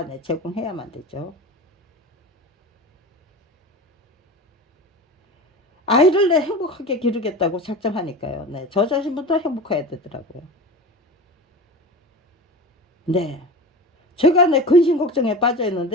네, 제공해야만 되죠. 아이를 내 행복하게 기르겠다고 작정하니까요. 네, 저 자신부터 행복해야 되더라고요. 네, 제가 내 근심 걱정에 빠져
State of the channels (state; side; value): normal; both; correlation 0.31